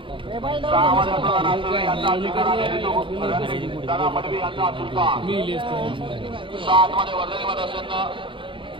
6 मध्ये अतुल नासुरे यांचा अधिकार आणि ऋतू दादा मडवी यांचा सुलतान. 7 मध्ये वर्धनीमध्ये असेल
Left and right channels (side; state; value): left; late; 0.25 ms